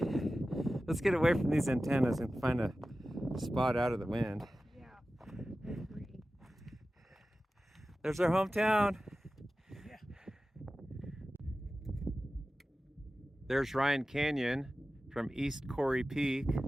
Let's get away from these antennas and find a spot out of the wind. Yeah, I agree. There's our hometown. Yeah. There's Ryan Canyon from East Cory Peak.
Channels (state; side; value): normal; both; correlation 0.95